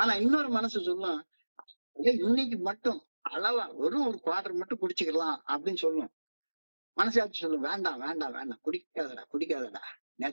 இன்னொரு மனசு சொல்லும், இன்னைக்கு மட்டும் அளவா வெறும் ஒரு குவார்டர் மட்டும் குடிச்சுக்கலாம் அப்படின்னு சொல்லும். மனசாட்சி சொல்லும், வேண்டாம் வேண்டாம் வேண்டாம், குடிக்காதடா குடிக்காதடா,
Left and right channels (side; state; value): both; inverted; correlation -1.00